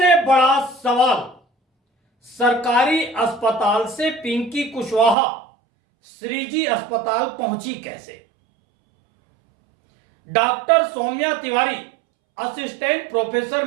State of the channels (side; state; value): left; drops out; at 5.2 s